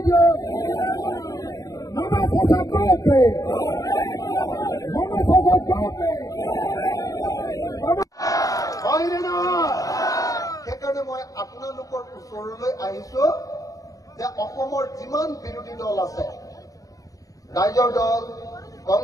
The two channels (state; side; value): late; right; 0.17 ms